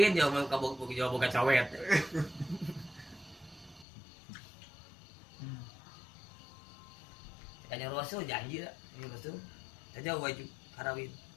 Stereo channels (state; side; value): drops out; right; at 3.9 s